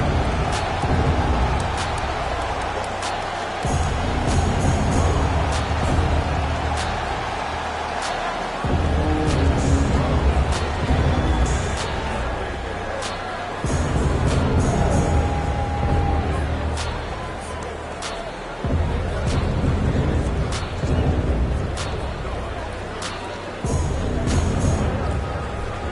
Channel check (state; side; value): identical; both; correlation 1.00